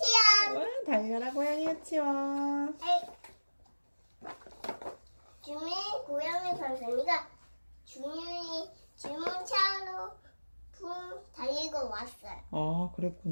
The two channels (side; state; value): both; inverted; correlation -1.00